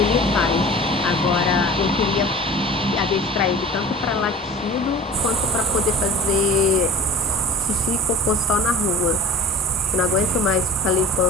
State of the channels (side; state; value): both; normal; correlation 0.41